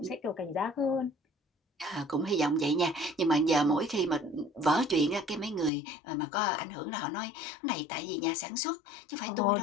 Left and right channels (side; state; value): right; drops out; at 5.7 s